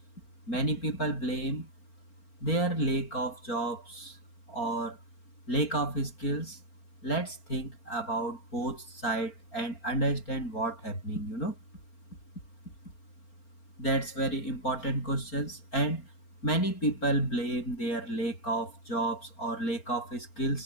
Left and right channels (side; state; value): right; late; 4.4 ms